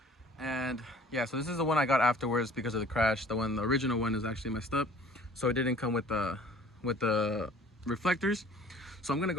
and yeah, so this is the one I got afterwards because of the crash. The original one is actually messed up, so it didn't come with the reflectors. So I'm gonna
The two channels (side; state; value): both; normal; correlation 0.51